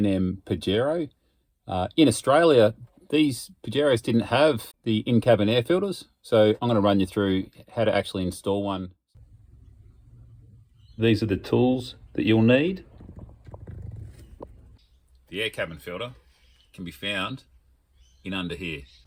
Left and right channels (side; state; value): both; identical; correlation 1.00